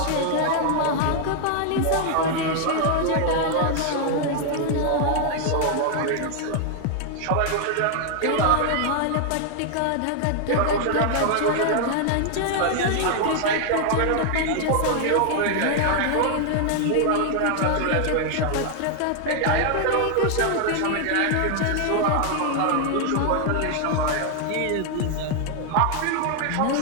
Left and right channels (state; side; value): different; both; correlation 0.00